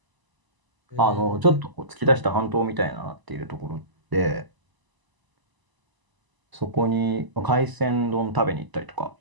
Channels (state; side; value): late; left; 1.0 ms